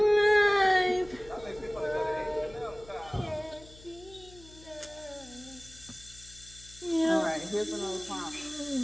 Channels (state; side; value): noise; left; hum, 21 dB below the sound